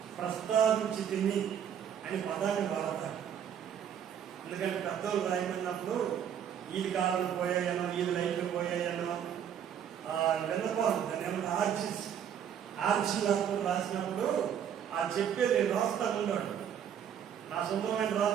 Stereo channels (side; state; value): left; quieter; 8.9 dB